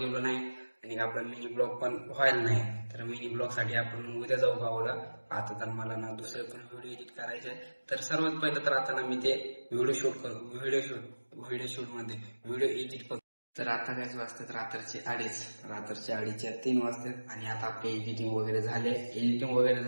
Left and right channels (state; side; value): inverted; both; correlation -1.00